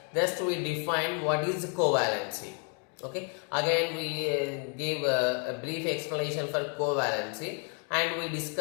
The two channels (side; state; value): right; quieter; 39.4 dB